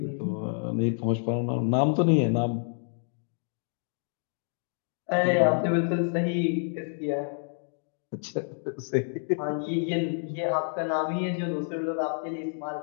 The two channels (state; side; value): silent; right; 59 dB below the other